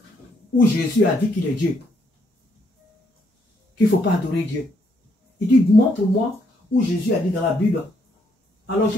où Jésus a dit qu'il est Dieu. Qu'il ne faut pas adorer Dieu. Il dit, montre-moi où Jésus a dit dans la Bible. Alors je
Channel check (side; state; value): both; normal; correlation 0.73